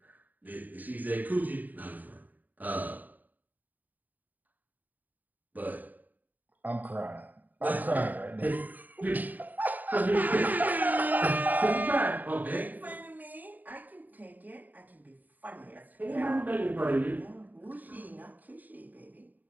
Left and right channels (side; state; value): left; late; 0.084 ms